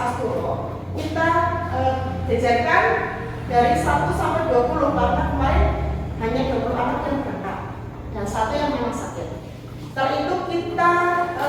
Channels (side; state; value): both; identical; correlation 1.00